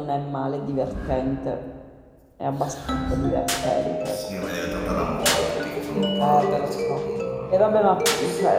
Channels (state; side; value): identical; both; correlation 1.00